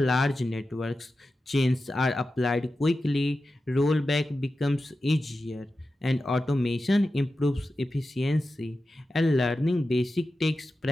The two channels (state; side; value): normal; both; correlation 0.92